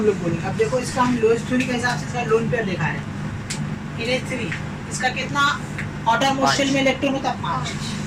लोग बोलेंगे। अब देखो इसका हम लुईस थ्योरी के हिसाब से इसका लोन पेयर दिखा रहे हैं NH3, इसका कितना आउटर मोस्ट शेल में इलेक्ट्रॉन होता है? 5,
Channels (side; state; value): both; identical; correlation 1.00